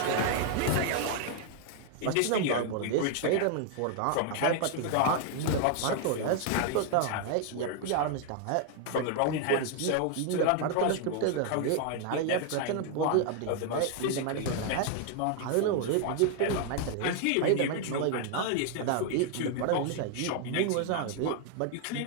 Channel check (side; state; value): both; different; correlation 0.00